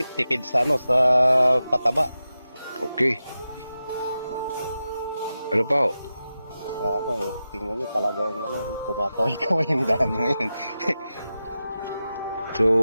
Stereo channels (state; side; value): inverted; both; correlation -0.92